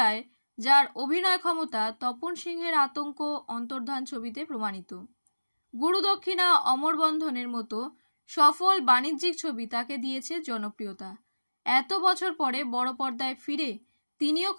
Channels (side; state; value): both; inverted; correlation -1.00